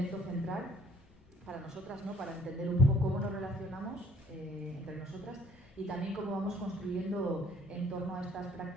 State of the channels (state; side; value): normal; both; correlation 0.59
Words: central para nosotras, ¿no? Para entender un poco cómo nos relacionamos entre nosotras y también cómo vamos construyendo en torno a estas